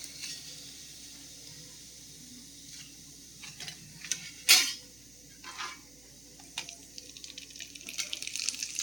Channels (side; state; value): right; noise; hum, 22 dB below the sound